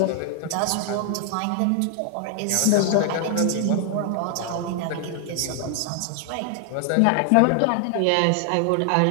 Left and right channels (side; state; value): both; different; correlation 0.00